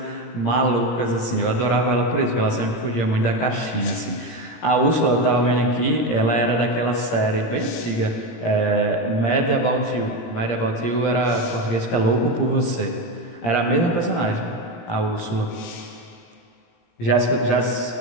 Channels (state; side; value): late; right; 17 ms